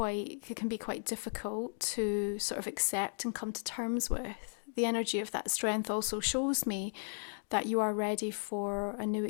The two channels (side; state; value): right; silent; digital silence